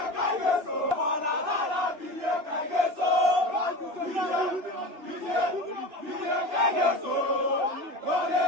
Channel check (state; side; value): late; left; 2.7 ms